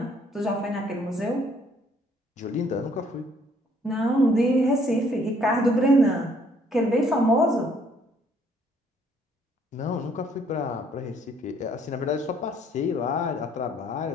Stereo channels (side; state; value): both; normal; correlation 0.64